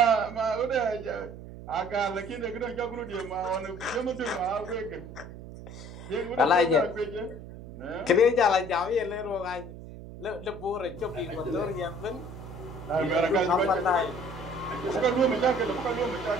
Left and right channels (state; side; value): noise; right; hum, 13 dB below the sound